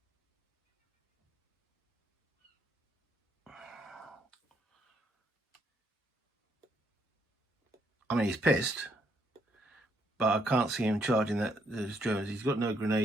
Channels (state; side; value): normal; both; correlation 0.73